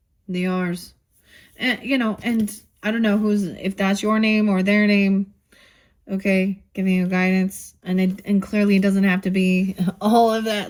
The R's. And, you know, and I don't know if that's your name or their name. Okay, giving you guidance. And clearly it doesn't have to be all of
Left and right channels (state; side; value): identical; both; correlation 1.00